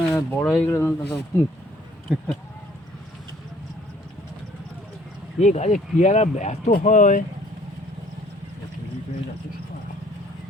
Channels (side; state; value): both; normal; correlation 0.59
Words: বড় হয়ে গেলে এই গাছে পেয়ারা এত হয়,